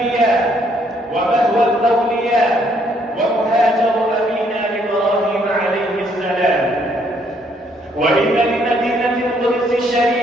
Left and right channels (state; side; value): normal; both; correlation 0.68